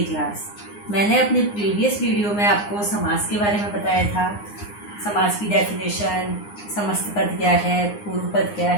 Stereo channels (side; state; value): right; late; 9.7 ms